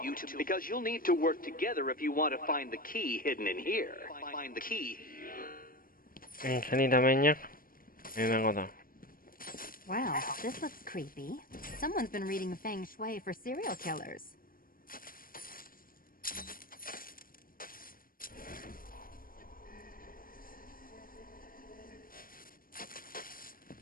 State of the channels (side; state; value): right; late; 0.41 ms